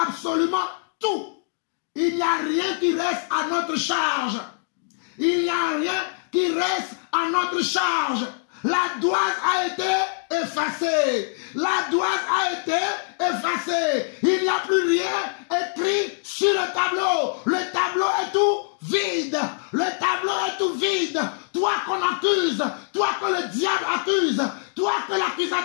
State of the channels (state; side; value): silent; right; digital silence